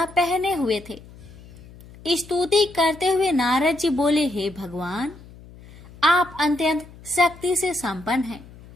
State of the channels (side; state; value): left; noise; hum, 20 dB below the sound